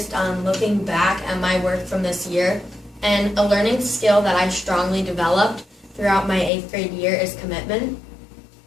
on looking back at my work from this year, and a learning skill that I strongly developed throughout my 8th grade year is commitment.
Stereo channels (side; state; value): right; drops out; at 6.5 s